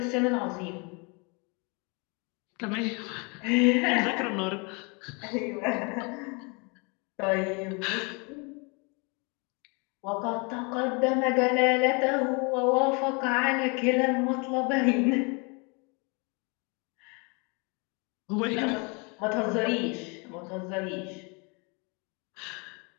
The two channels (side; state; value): right; quieter; 31.7 dB